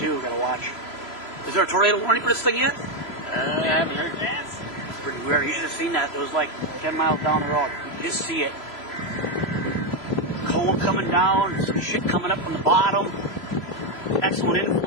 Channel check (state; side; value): late; right; 3.0 ms